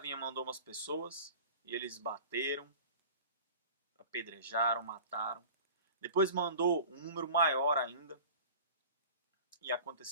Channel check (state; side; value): inverted; both; correlation -0.40